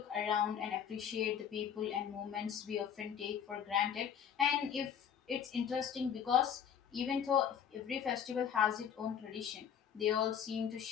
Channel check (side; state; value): right; quieter; 8.3 dB